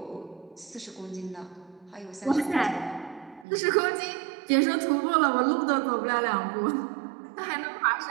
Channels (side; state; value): left; drops out; at 3.5 s